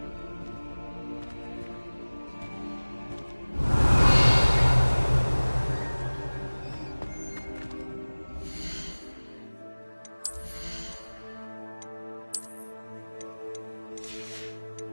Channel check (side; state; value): both; inverted; correlation -1.00